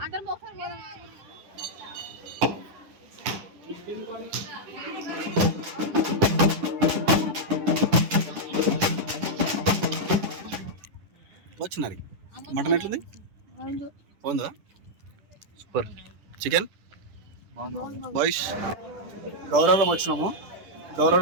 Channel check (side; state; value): left; late; 10 ms